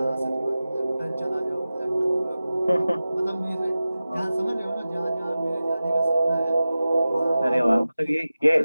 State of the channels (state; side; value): inverted; both; correlation -0.95